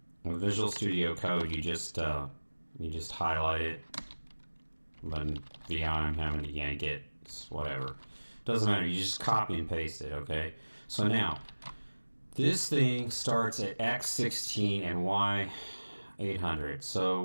with Visual Studio Code, you just highlight it. But in VI, I'm having to yank it. It's whatever. Doesn't matter. You just copy and paste it. Okay. So now, this thing starts at X16 and Y800. So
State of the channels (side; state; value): both; inverted; correlation -1.00